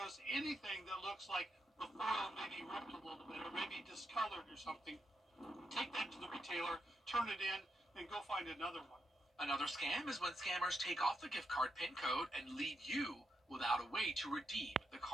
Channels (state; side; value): normal; both; correlation 0.82